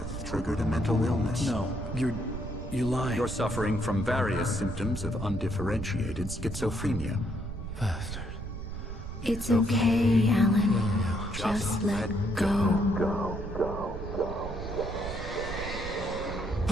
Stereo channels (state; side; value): noise; right; rumble, 8 dB below the sound